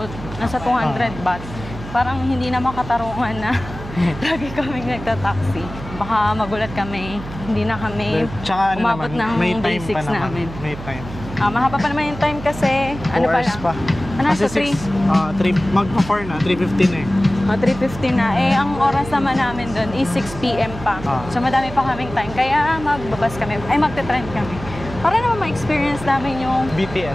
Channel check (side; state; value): right; noise; hum, 12 dB below the sound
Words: nasa 200 baht. Parang hindi na makatarungan na lagi kaming nagta-taxi. Baka magulat kami, hindi na kami umabot ng day 6 namin. May time. Mahaba pa naman yung time kasi, ano pa lang? Pa. Nasa 3? Magpa-4 na, 3:15 eh. 3:15 na. Ang oras naman namin doon is 6 p.m. pa. So madami pa kaming time. Kaya magbabas kami, magte-trend kami. Para naman ma-experience namin yung